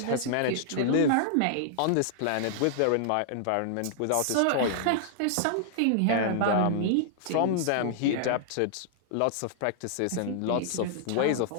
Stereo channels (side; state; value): both; different; correlation -0.01